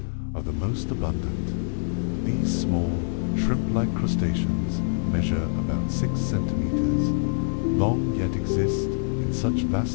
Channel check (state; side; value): silent; right; 62 dB below the other